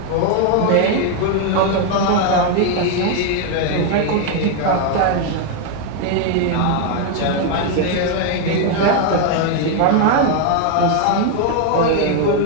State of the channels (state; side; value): different; both; correlation 0.01